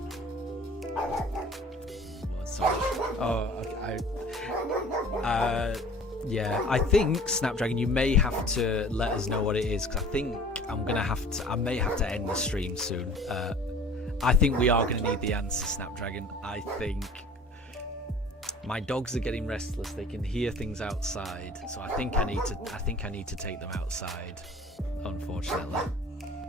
Yeah, I think Snapdragon, you may have to let us know what it is, because I think I may have to end the stream soon. I think we are going to need the answer, Snapdragon. I think my dogs are getting restless. They can hear things outside, so I think I need to take them outside, unfortunately.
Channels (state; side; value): normal; both; correlation 0.47